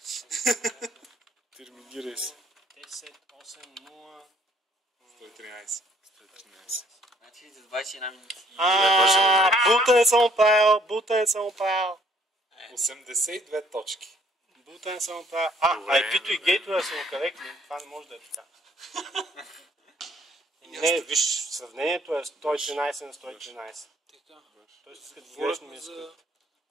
Терминирай се. 10.8.0. 113. 113. Значи за 21 минути. Бутен съм правил. 82 точки. Бутен съм правил. IP-то и гейтове са коректни. Това не може да е така. Не, виж, сравнението е 113 на 113. Така. Тоест, искат грешно Говорихме ми за искат.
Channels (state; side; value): normal; both; correlation 0.62